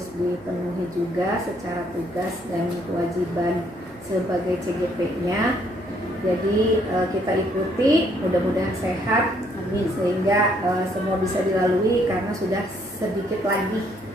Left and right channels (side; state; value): left; noise; hum, 27 dB below the sound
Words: dipenuhi juga secara tugas dan kewajiban sebagai CGP-nya. Jadi kita ikuti, mudah-mudahan sehat, amin, sehingga semua bisa dilalui karena sudah sedikit lagi